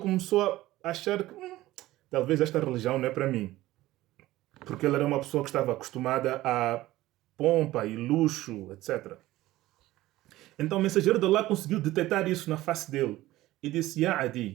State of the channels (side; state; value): left; quieter; 16.6 dB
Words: a achar que talvez esta religião não é para mim. Porque ele era uma pessoa que estava acostumada a pompa e luxo, etc. Então o mensageiro de Allah conseguiu detectar isso na face dele e disse: Ya